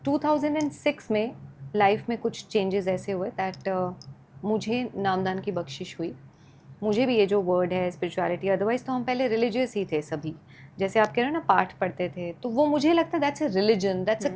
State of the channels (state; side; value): identical; both; correlation 1.00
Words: 2006 में लाइफ में कुछ चेंजेस ऐसे हुए दैट मुझे नामदान की बख्शिश हुई. मुझे भी ये जो वर्ड है स्पिरिचुअलिटी, अदरवाइज तो हम पहले रिलीजियस ही थे सभी, जैसे आप कह रहे हो ना पाठ पढ़ते थे, तो वो मुझे लगता है that's a religion, that's a